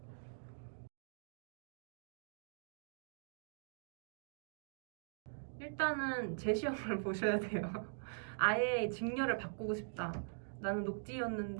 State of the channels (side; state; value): left; silent; digital silence